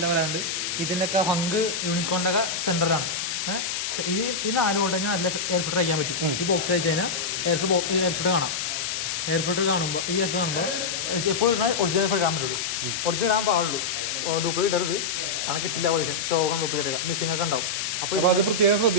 വരാറുണ്ട്. ഇതിൻ്റെയൊക്കെ ഹങ്ക് യൂണിക്കോണിൻ്റെ ഒക്കെ സെൻറ്ററിലാണ്. ഈ 4 വോൾട്ട് കഴിഞ്ഞാൽ നല്ല എയർ ഫിൽറ്റർ അയക്കാൻ പറ്റും. ഈ ബോക്സ് അയച്ചു കഴിഞ്ഞാൽ എയർ ഫിൽറ്റർ കാണാം. എയർ ഫിൽറ്റർ കാണുമ്പോൾ എപ്പോഴും ഒറിജിനൽ ഫിൽറ്റർ ഇടാൻ പറ്റുള്ളൂ. ഒറിജിനൽ ഇടാൻ പാടുള്ളൂ, ഡ്യൂപ്ലിക്കേറ്റ് ഇടരുത്. കാരണം കിട്ടില്ല പൊല്യൂഷൻ, ഷോകം ഡ്യൂപ്ലിക്കേറ്റ് ഒക്കെ മിസ്സിംഗ് ഒക്കെ ഉണ്ടാവും. അപ്പോൾ ഇടാൻ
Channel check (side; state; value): left; noise; hiss, 2 dB below the sound